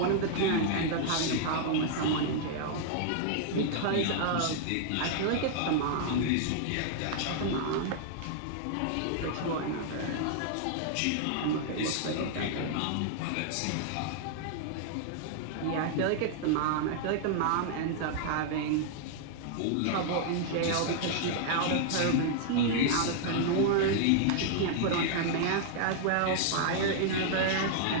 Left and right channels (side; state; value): both; different; correlation -0.01